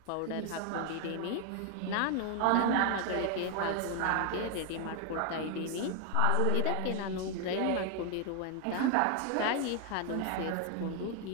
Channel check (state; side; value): different; both; correlation 0.01